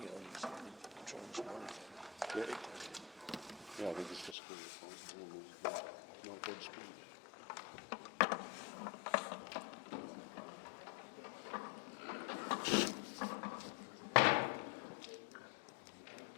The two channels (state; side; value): drops out; right; at 4.4 s